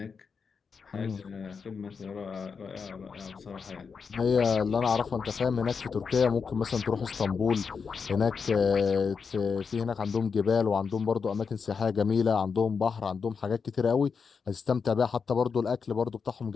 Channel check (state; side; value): quieter; right; 5.7 dB